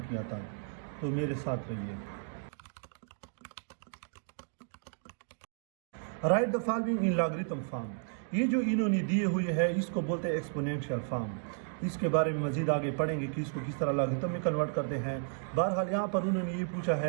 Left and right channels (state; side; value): silent; left; digital silence